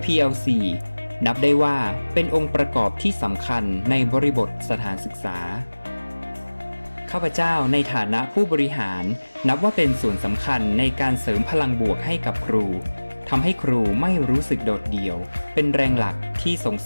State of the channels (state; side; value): inverted; both; correlation -1.00